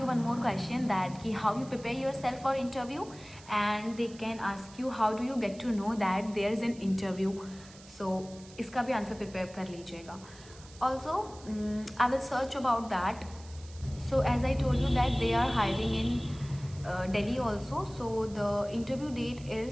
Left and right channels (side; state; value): right; noise; hiss, 21 dB below the sound